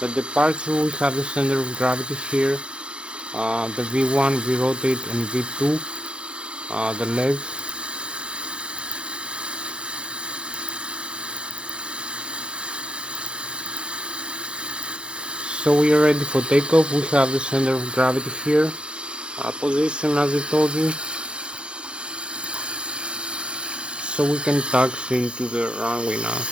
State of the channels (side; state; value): left; late; 0.055 ms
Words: the departure, we have the center of gravity here, the V1, V rotate and V2, the legs. So we are ready for takeoff. We have the center of gravity here, position as I told you. So we can taxi into the runway now